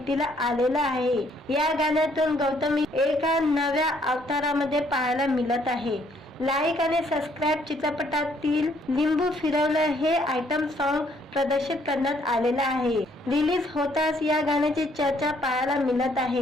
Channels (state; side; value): normal; both; correlation 0.67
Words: आलेलं आहे। या गाण्यातून गौतमी एका नव्या अवतारामध्ये पाहायला मिळत आहे। लाईक आणि सबस्क्राईब चित्रपटातील लिंबू फिरवलं हे आयटम सॉन्ग प्रदर्शित करण्यात आलेलं आहे। रिलीज होताच या गाण्याची चर्चा पाहायला मिळत